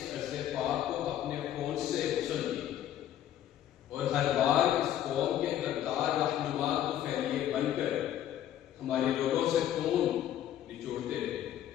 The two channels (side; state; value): right; quieter; 11.4 dB